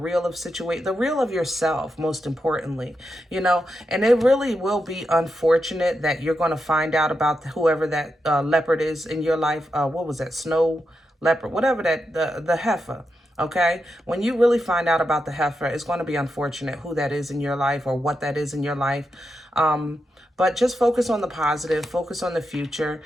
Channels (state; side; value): normal; both; correlation 0.86